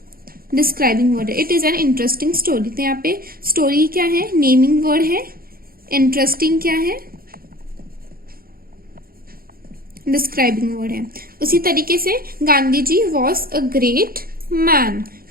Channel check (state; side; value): late; left; 0.43 ms